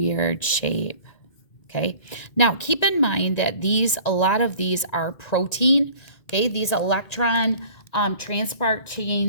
shape, okay? Now, keep in mind that a lot of these are protein, okay? These electron transport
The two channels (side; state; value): right; late; 1.9 ms